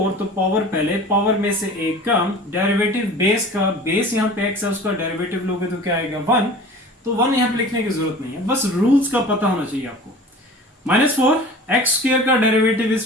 तो पावर पहले, पावर में से एक कम, डेरिवेटिव बेस का, बेस यहाँ पे x है, उसका डेरिवेटिव लोगे तो क्या आएगा 1। तो 1 यहाँ पे लिखने की जरूरत नहीं है, बस रूल्स का पता होना चाहिए आपको। -4 एक्स स्क्वायर का डेरिवेटिव,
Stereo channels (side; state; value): both; normal; correlation 0.41